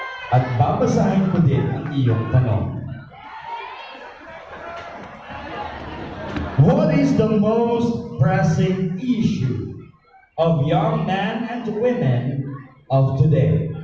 At babasahin ko din ang iyong tanong. What is the most pressing issue of young men and women of today?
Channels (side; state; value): both; identical; correlation 1.00